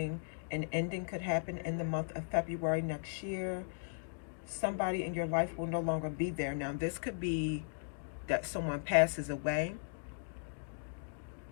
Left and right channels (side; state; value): right; silent; digital silence